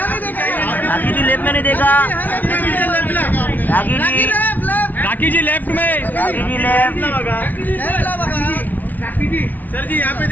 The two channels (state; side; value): late; right; 0.080 ms